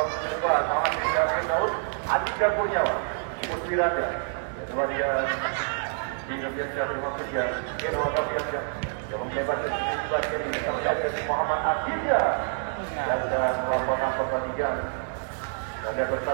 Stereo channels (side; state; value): left; silent; 60 dB below the other